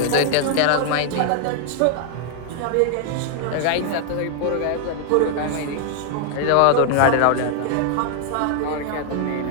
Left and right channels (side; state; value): both; different; correlation 0.00